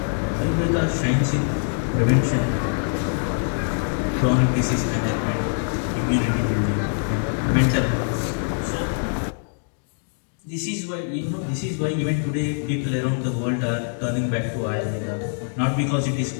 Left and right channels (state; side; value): silent; right; digital silence